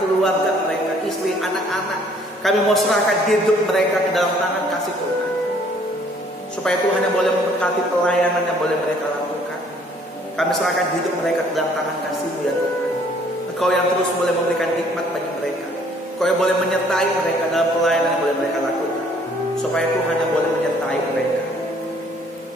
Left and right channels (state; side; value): normal; both; correlation 0.60